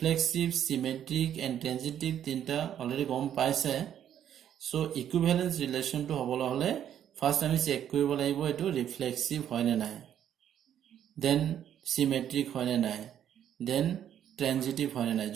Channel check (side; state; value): left; quieter; 10.1 dB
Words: symmetric and transitive তিনটা already গম পাইছে. So equivalence relation to হবলৈ হলে first আমি check কৰিব লাগিব এটো reflexive হয় নে নাই, then symmetric হয় নে নাই, then transitive হয় নে নাই.